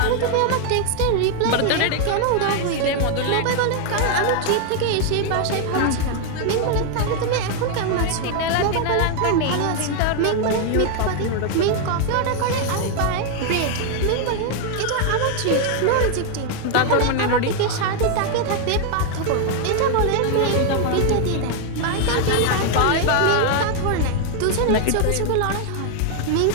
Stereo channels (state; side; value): different; both; correlation 0.00